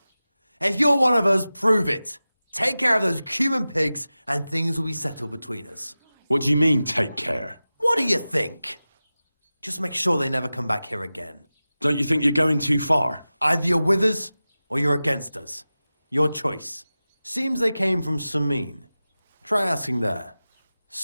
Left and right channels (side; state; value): both; inverted; correlation -0.96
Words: If you're one of us, prove it. Take care of those Cuban pigs and things will be settled between us. What do you mean, take care? What do you think? Just make sure they never come back here again. Don't you think you're going too far? Either you're with us, or you're against us. Your choice. Seems they came from Samin. Try asking there.